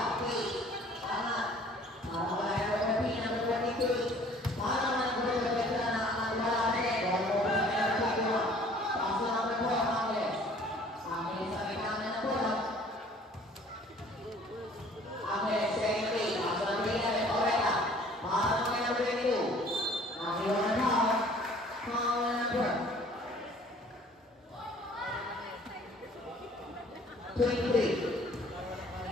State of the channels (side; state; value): both; normal; correlation 0.54